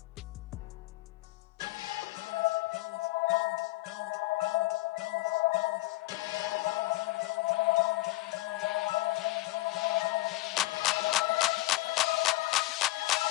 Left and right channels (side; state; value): right; quieter; 19.6 dB